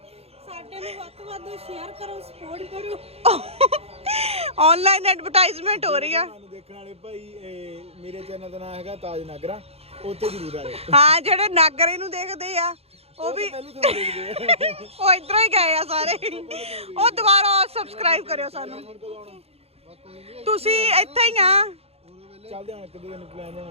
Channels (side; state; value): left; late; 0.29 ms